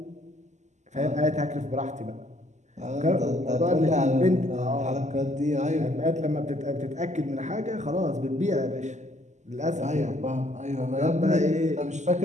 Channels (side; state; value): left; late; 0.34 ms